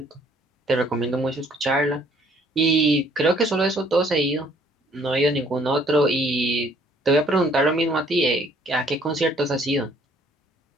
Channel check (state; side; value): normal; both; correlation 0.61